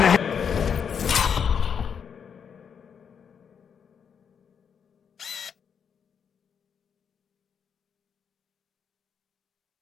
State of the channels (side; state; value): right; quieter; 7.2 dB